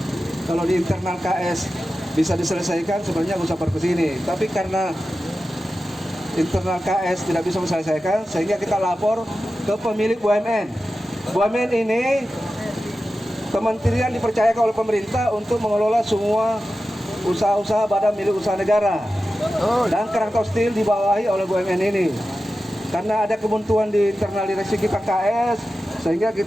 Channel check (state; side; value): normal; both; correlation 0.93